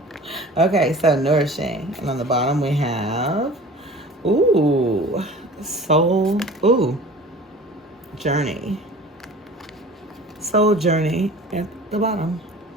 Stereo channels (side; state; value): both; normal; correlation 0.43